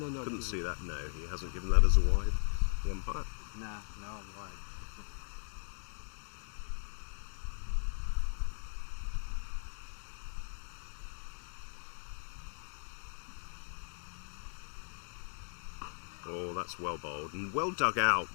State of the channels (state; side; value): silent; right; 52 dB below the other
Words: not Couldn't given. see that. No, he hasn't given that as a wide. The umpire. No, wide. Oh, that's well bowled and well dug out